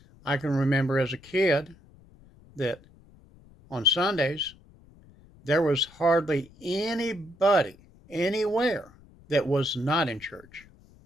I can remember as a kid that on Sundays there was hardly anybody anywhere that was not in church.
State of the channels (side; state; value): left; noise; rumble, 26 dB below the sound